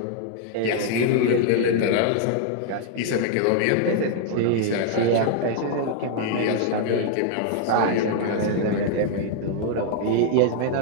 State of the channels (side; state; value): both; different; correlation 0.00